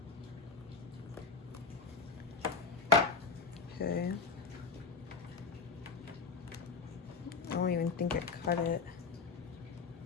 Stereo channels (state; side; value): quieter; right; 4.6 dB